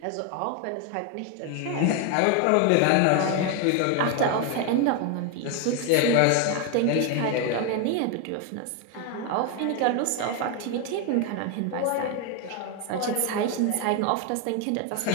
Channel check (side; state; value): both; different; correlation 0.01